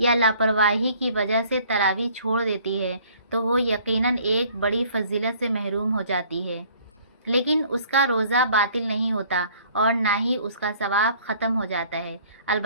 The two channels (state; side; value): inverted; both; correlation -0.56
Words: یا لاپرواہی کی وجہ سے تراویح چھوڑ دیتی ہے تو وہ یقیناً ایک بڑی فضیلت سے محروم ہو جاتی ہے، لیکن اس کا روزہ باطل نہیں ہوتا اور نہ ہی اس کا ثواب ختم ہو جاتا ہے۔